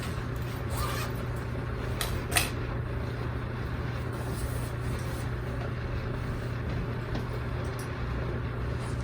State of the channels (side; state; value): both; identical; correlation 1.00